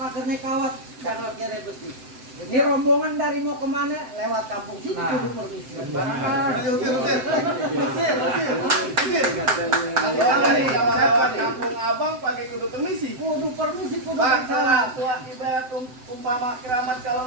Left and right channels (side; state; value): left; late; 7.8 ms